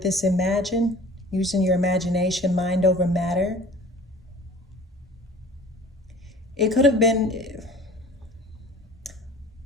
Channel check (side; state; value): both; normal; correlation 0.45